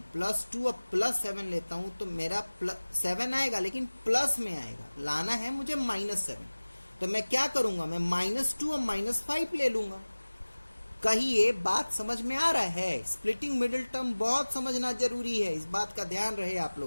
+2 और +7 लेता हूं तो मेरा 7 आएगा, लेकिन प्लस में आएगा। लाना है मुझे -7, तो मैं क्या करूंगा, मैं -2 और -5 ले लूंगा। कहिए बात समझ में आ रहा है। स्प्लिटिंग मिडिल टर्म बहुत समझना जरूरी है, इस बात का ध्यान रहे आप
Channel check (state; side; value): inverted; both; correlation -1.00